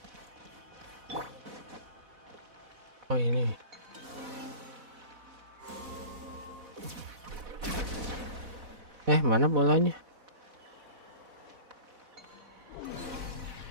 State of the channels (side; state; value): left; late; 4.1 ms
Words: Oh ini. Mana bolanya?